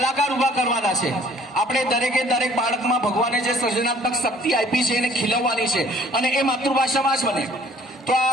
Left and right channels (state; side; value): normal; both; correlation 0.56